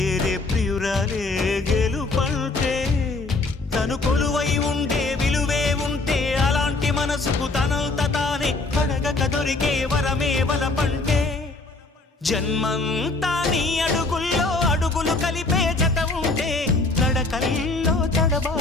ప్రియురాలే గెలుపంటే తను కొలువై ఉండే విలువే ఉంటే అలాంటి మనసుకు తనంత తానే అడగక దొరికే వరమే వలపంటే జన్మంతా నీ అడుగుల్లో అడుగులు కలిపే జత ఉంటే నడకల్లో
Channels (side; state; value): right; quieter; 3.4 dB